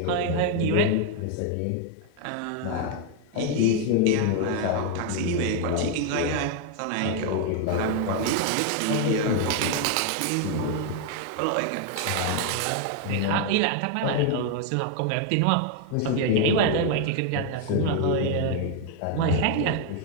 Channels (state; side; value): different; both; correlation 0.01